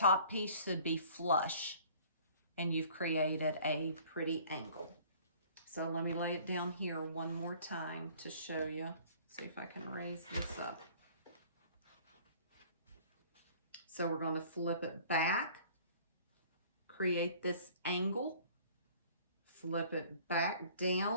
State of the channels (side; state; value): both; inverted; correlation -0.51